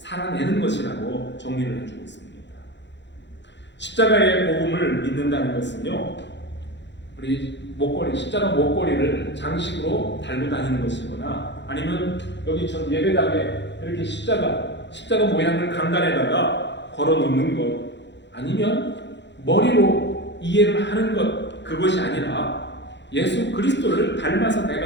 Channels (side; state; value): right; late; 0.52 ms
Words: 것이라고 정리를 해주고 있습니다. 십자가의 복음을 믿는다는 것은요, 우리 십자가 목걸이를 장식으로 달고 다니는 것이거나, 아니면 여기 전 예배당에 이렇게 십자가 모양을 강단에다가 걸어 놓는 것, 아니면 머리로 이해를 하는 것, 그것이 아니라 예수 그리스도를 닮아서